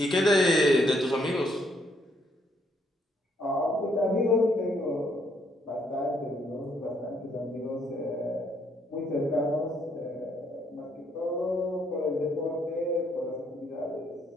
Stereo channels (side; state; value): both; normal; correlation 0.71